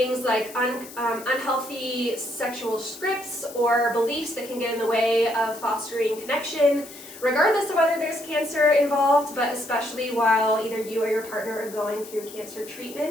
like unhealthy sexual scripts or beliefs that can get in the way of fostering connection, regardless of whether there's cancer involved, but especially while either you or your partner are going through cancer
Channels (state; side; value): noise; left; hiss, 16 dB below the sound